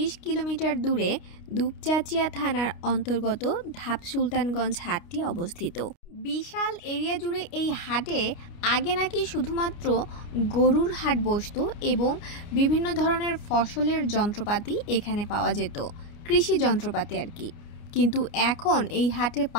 কিলোমিটার দূরে দুপচাচিয়া থানার অন্তর্গত ধাপ সুলতানগঞ্জ হাটটি অবস্থিত। বিশাল এরিয়া জুড়ে এই হাটে আগে নাকি শুধুমাত্র গরুর হাট বসতো এবং বিভিন্ন ধরনের ফসলের যন্ত্রপাতি এখানে পাওয়া যেত, কৃষি যন্ত্রপাতি আর কি। কিন্তু এখন এই হাটে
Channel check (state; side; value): late; right; 29 ms